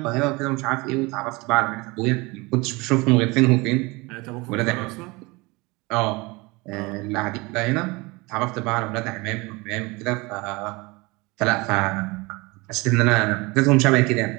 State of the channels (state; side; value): quieter; left; 24.6 dB